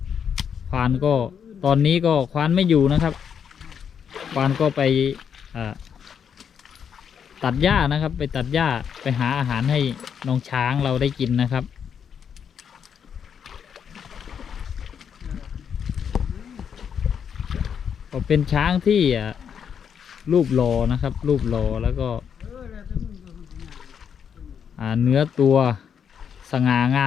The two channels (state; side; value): quieter; right; 7.6 dB